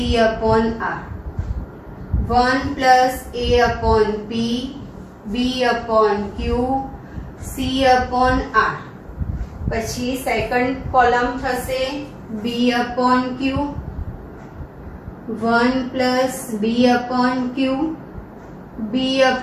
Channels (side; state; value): both; identical; correlation 1.00